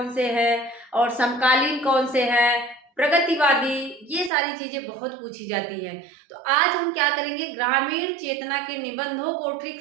से है और समकालीन कौन से है, प्रगतिवादी, ये सारी चीजें बहुत पूछी जाती हैं। तो आज हम क्या करेंगे, ग्रामीण चेतना के निबंधों को ट्रिक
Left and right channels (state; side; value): drops out; left; at 4.3 s